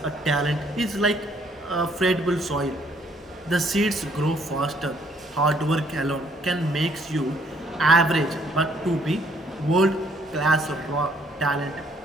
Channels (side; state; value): both; normal; correlation 0.66